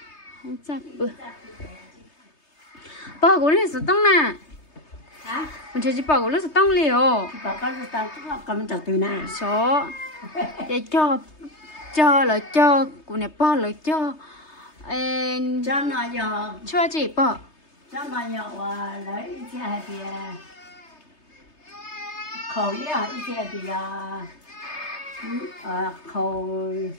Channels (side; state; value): right; late; 3.3 ms